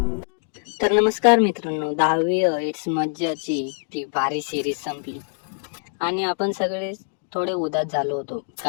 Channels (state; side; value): silent; right; digital silence